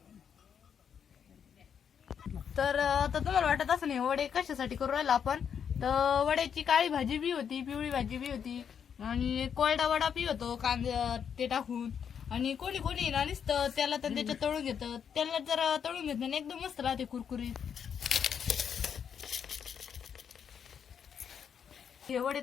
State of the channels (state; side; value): quieter; right; 7.7 dB